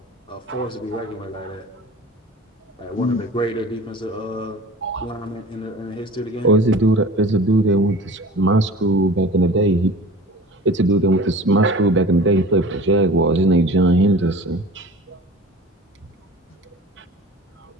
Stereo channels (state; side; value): normal; both; correlation 0.40